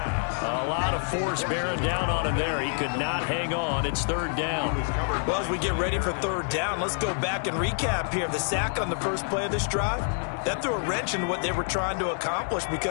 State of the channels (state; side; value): silent; right; 60 dB below the other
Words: A lot of force bearing down on him there. He could not hang on. It's 3rd down. Well, as we get ready for 3rd down, let's go back and recap here. The sack on the first play of this drive, that threw a wrench in what they were trying to accomplish